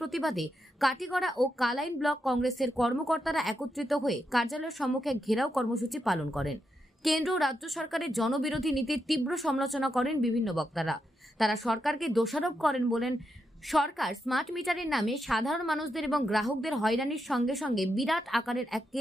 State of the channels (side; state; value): both; normal; correlation 0.84